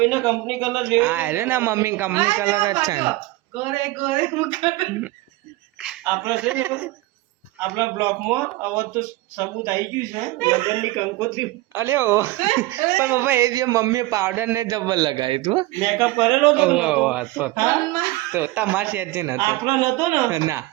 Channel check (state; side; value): quieter; left; 18.9 dB